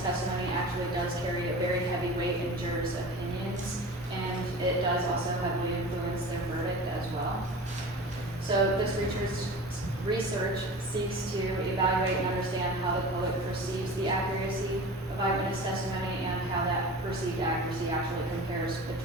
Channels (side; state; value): both; normal; correlation 0.35